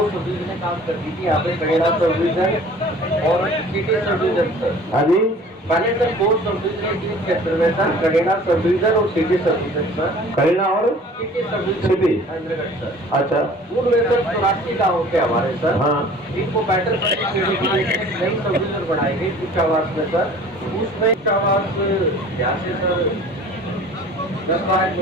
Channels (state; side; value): normal; both; correlation 0.47